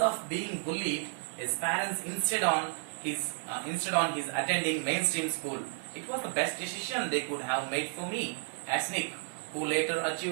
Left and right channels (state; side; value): silent; left; 56 dB below the other